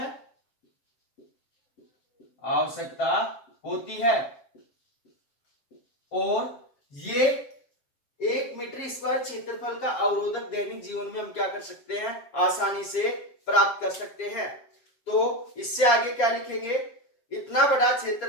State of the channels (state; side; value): late; right; 7.2 ms